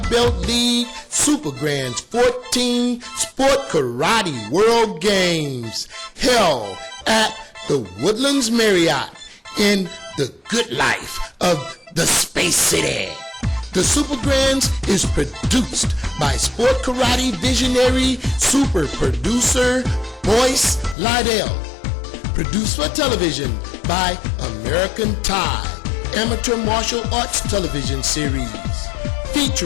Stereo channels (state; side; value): drops out; right; at 21.0 s